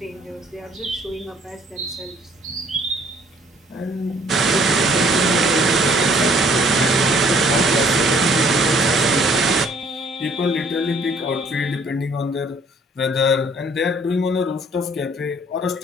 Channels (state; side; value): normal; both; correlation 0.60